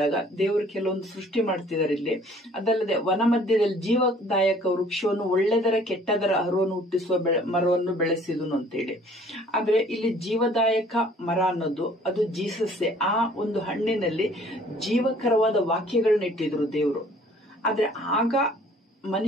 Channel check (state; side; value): normal; both; correlation 0.56